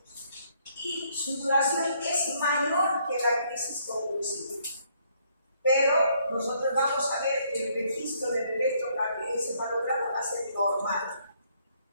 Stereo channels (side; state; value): both; inverted; correlation -0.68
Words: y su duración es mayor que la crisis convulsiva. Pero nosotros vamos a ver que el registro del electroencefalograma va a ser normal.